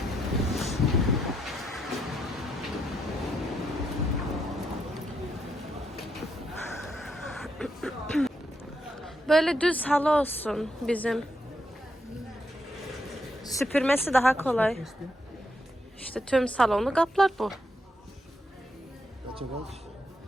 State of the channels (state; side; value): normal; both; correlation 0.79